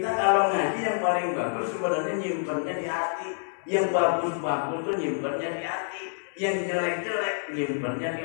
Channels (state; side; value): silent; right; digital silence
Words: kalau ngaji yang paling bagus sebenarnya nyimpennya di hati. Yang bagus-bagus tuh nyimpennya di hati. Yang jelek-jelek nyimpennya di